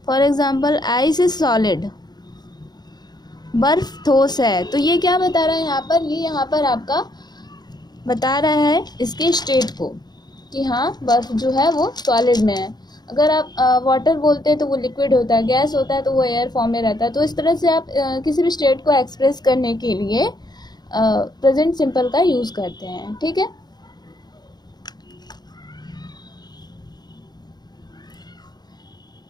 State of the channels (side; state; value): right; late; 0.20 ms